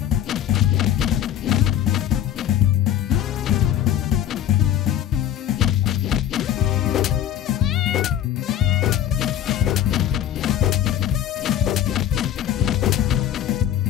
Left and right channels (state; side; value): quieter; right; 11.0 dB